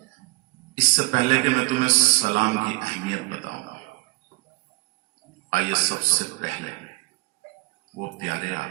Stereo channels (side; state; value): left; quieter; 24.8 dB